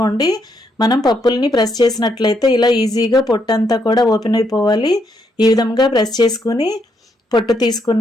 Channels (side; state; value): both; normal; correlation 0.76